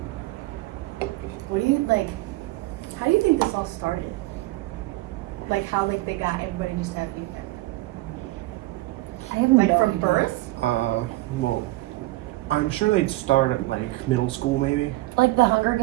What do you like? How do you think this all started? Like how like they got everybody just have handicap? I have Like no from idea. birth? Well, I'm sure they'd start at like middle school maybe. Like the Hunger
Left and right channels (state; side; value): quieter; left; 19.4 dB